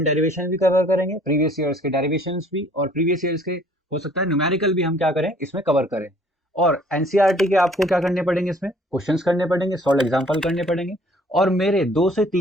डेरिवेशन भी कवर करेंगे, प्रीवियस ईयर्स के डेरिवेशंस भी, और प्रीवियस ईयर्स के हो सकता है न्यूमेरिकल भी हम क्या करें इसमें कवर करें। और एनसीईआरटी के आपको क्या करने पड़ेंगे, इसमें क्वेश्चंस करने पड़ेंगे, सॉल्व एग्जाम्पल करने पड़ेंगे और मेरे 2 से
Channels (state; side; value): normal; both; correlation 0.57